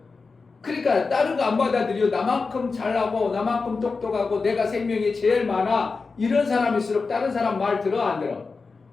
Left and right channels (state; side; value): quieter; right; 4.4 dB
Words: 그러니까 다른 거 안 받아들여. 나만큼 잘하고 나만큼 똑똑하고 내가 생명이 제일 많아 이런 사람일수록 다른 사람 말 들어 안 들어?